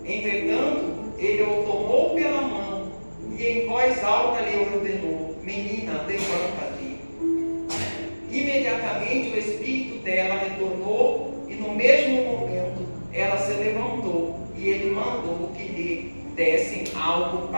Entretanto, ele o tomou pela mão e em voz alta lhe ordenou: menina, levanta-te. Imediatamente o espírito dela retornou, e no mesmo momento ela se levantou, e ele mandou que lhe dessem algo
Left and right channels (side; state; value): both; inverted; correlation -1.00